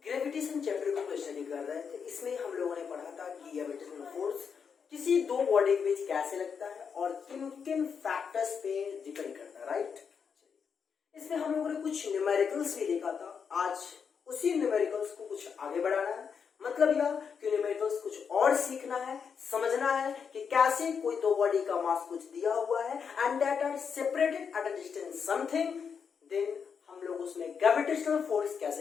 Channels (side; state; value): right; quieter; 6.5 dB